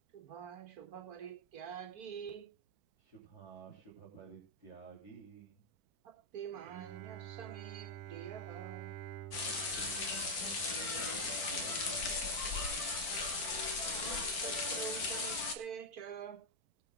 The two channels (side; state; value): left; late; 4.5 ms